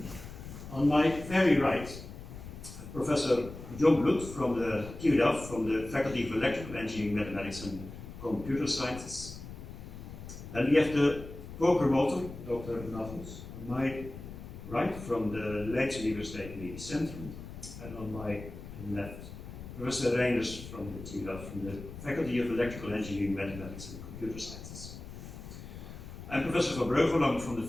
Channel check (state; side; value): noise; left; rumble, 12 dB below the sound